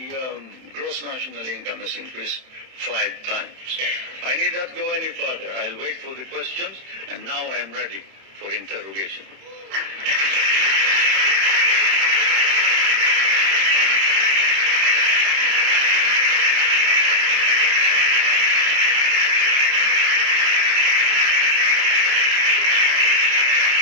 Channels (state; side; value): late; left; 31 ms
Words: gross national income has increased 5 times. I need not go any further. I'll wait for the questions, and now I am ready for interrogation.